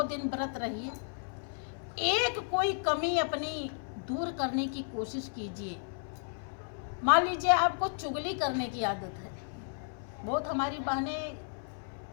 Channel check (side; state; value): right; silent; 56 dB below the other